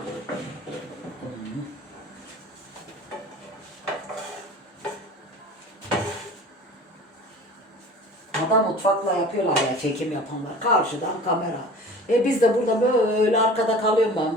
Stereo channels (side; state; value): both; normal; correlation 0.41